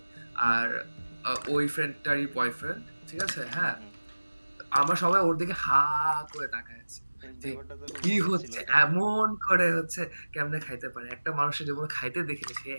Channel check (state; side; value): inverted; both; correlation -1.00